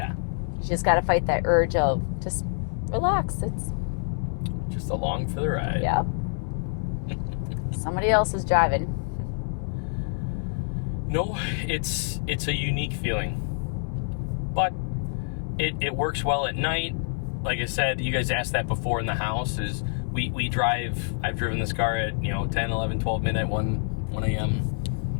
You just got to fight that urge of just relax. It's just along for the ride. Yeah. Somebody else is driving. No, it's a unique feeling, but it works well at night. Like I said, you guys asked that before in the house. I've driven this car at 10, 11, 12 midnight, 1 a.m.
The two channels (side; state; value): right; silent; digital silence